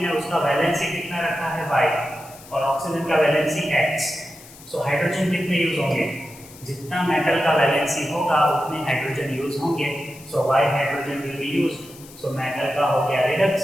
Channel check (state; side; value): noise; left; hiss, 20 dB below the sound